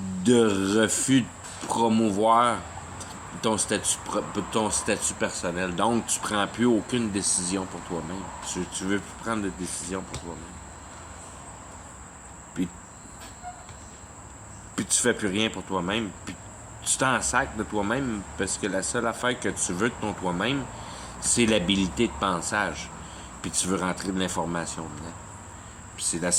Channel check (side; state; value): both; identical; correlation 1.00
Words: refus de promouvoir ton statut personnel. Donc, tu prends plus aucune décision pour toi-même. Tu veux plus prendre de décision pour toi-même. Puis tu fais plus rien pour toi-même. Puis tu t'en sacs de toi-même parce que la seule affaire que tu veux de ton toi-même, c'est l'habilité de pensage. Puis tu veux rentrer de l'information dedans. Puis c'est la